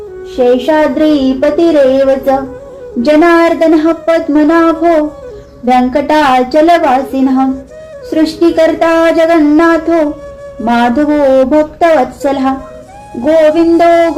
शेषाद्रिपतिरेव च जनार्दनः पद्मनाभो वेङ्कटाचलवासिनः सृष्टिकर्ता जगन्नाथो माधवो भक्तवत्सलः गोविन्दो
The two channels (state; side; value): identical; both; correlation 1.00